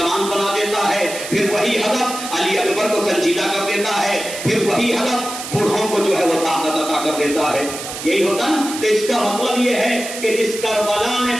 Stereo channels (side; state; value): right; noise; hiss, 9 dB below the sound